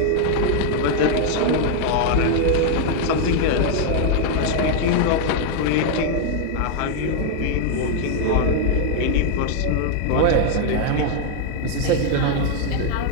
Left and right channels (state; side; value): different; both; correlation 0.00